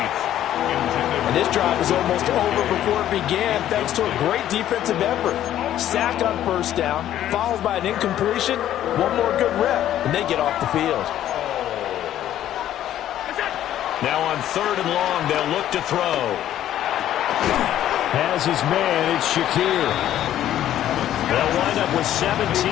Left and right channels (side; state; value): right; quieter; 11.9 dB